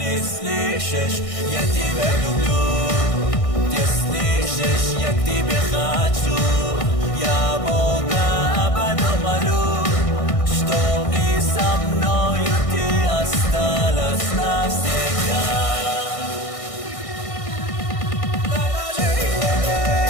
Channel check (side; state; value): right; late; 1.6 ms